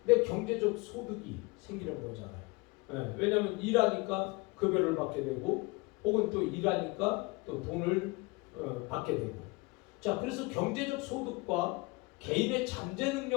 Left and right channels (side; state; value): right; quieter; 25.7 dB